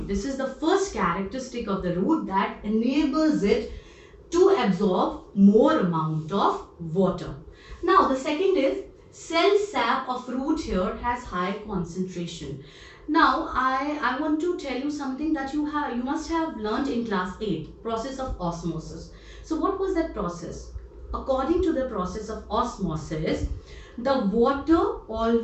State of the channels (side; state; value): both; identical; correlation 1.00